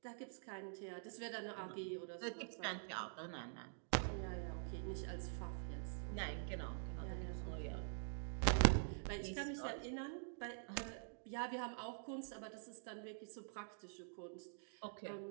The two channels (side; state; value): left; silent; digital silence